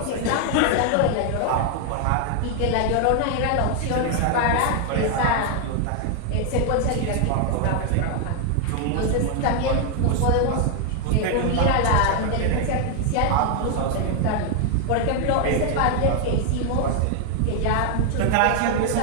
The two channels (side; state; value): both; different; correlation 0.00